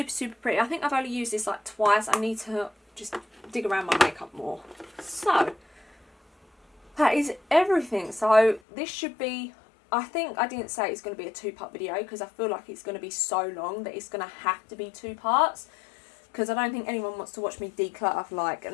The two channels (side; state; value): right; drops out; at 8.6 s